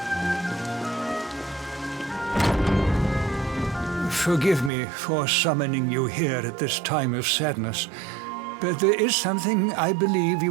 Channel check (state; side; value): drops out; left; at 4.7 s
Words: forgive me for summoning you here at this time of sadness, but there is something I believe you